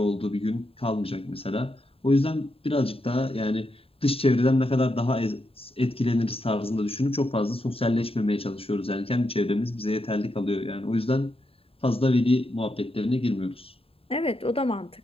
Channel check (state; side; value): late; right; 0.27 ms